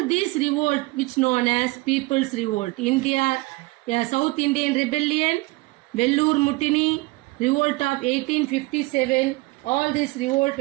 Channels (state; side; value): quieter; left; 23.2 dB